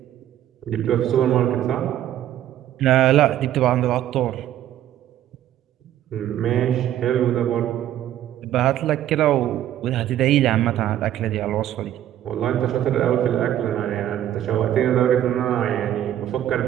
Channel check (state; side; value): quieter; left; 11.9 dB